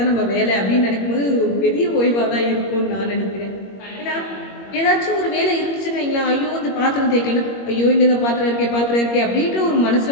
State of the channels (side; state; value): right; late; 21 ms